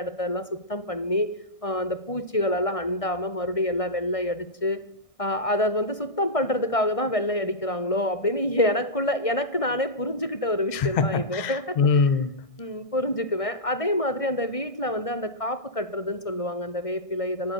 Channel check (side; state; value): right; late; 1.6 ms